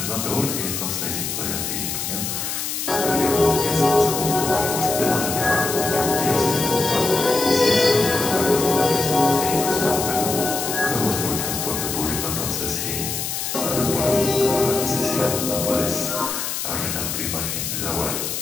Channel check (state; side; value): noise; left; hiss, 3 dB below the sound